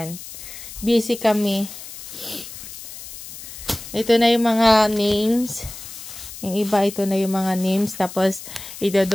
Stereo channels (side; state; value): left; noise; hiss, 13 dB below the sound